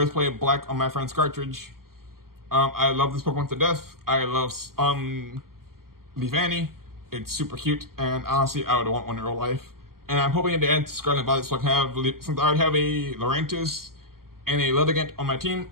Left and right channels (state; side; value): late; left; 0.92 ms